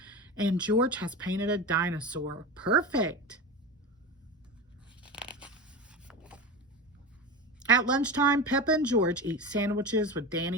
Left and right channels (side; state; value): both; normal; correlation 0.25